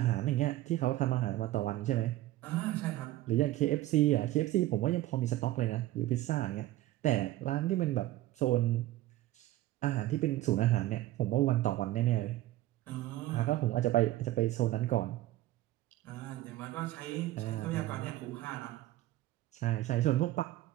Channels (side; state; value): left; quieter; 15.7 dB